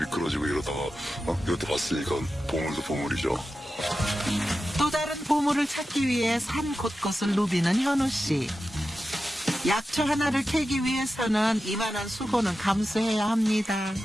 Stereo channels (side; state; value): both; normal; correlation 0.92